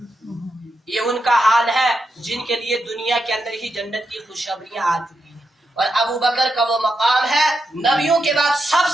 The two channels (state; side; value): normal; both; correlation 0.85